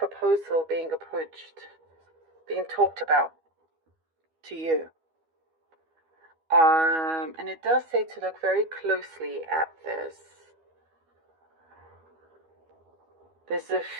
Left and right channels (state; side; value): late; left; 12 ms